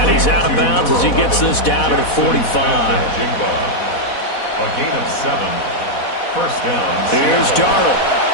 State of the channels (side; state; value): right; late; 4.1 ms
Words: he's out of bounds as he gets this down to the 45. A gain of 7. First down. Here's Darnold.